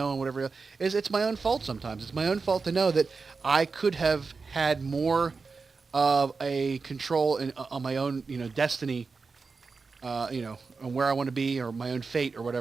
and whatever it's my own fault sometimes. It's my own fault to know that I could have had more of a control on my own, destiny, on where I want to be, or my own fate, or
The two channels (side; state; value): left; quieter; 4.6 dB